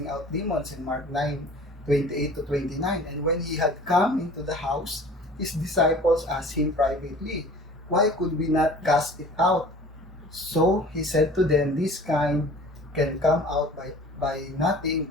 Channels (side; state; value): both; normal; correlation 0.45